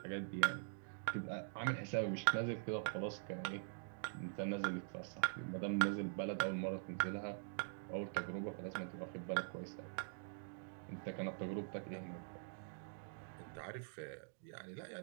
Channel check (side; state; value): left; silent; digital silence